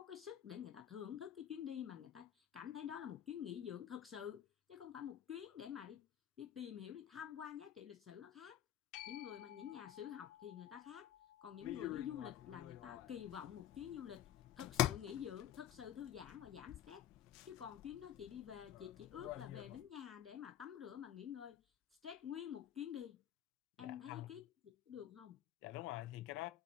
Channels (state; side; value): quieter; right; 11.1 dB